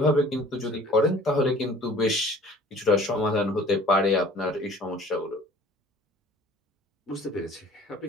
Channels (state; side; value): normal; both; correlation 0.49